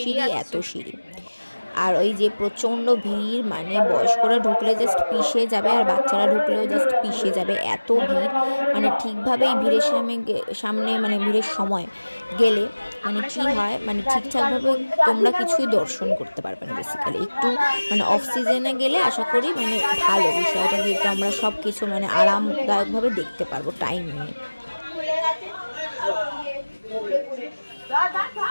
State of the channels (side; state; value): both; inverted; correlation -1.00